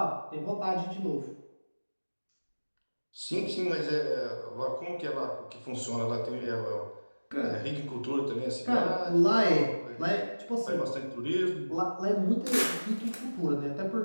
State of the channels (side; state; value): both; inverted; correlation -1.00